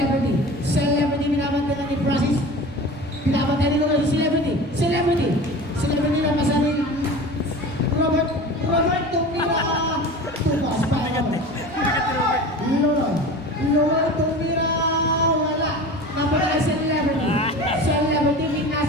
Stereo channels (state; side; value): normal; both; correlation 0.35